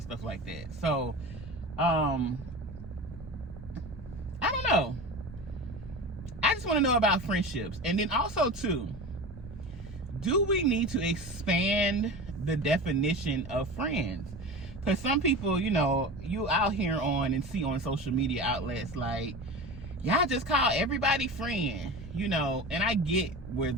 like that. So, I don't know. I just want to know about friendships. And then also, too, do we need to expand the definition of friends? Because some people, you know, you out here on and see on social media outlets like, y'all just call everybody friend, you know, and I get where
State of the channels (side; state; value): both; normal; correlation 0.31